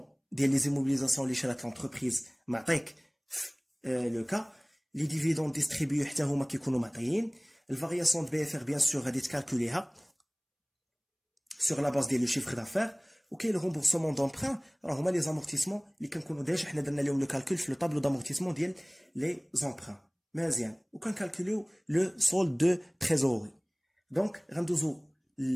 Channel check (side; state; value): both; identical; correlation 1.00